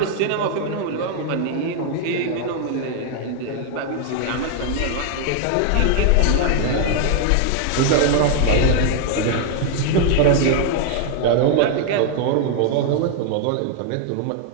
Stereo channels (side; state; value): both; different; correlation 0.00